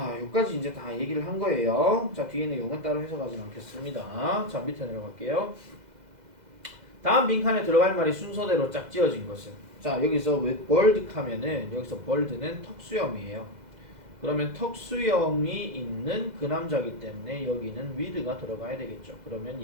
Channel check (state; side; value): late; left; 2.0 ms